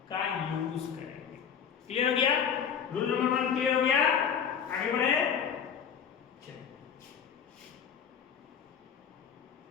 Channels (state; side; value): quieter; right; 7.6 dB